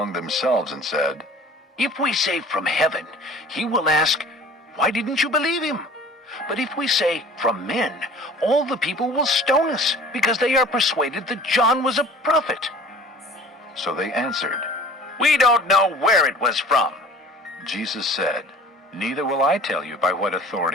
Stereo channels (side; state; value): both; normal; correlation 0.46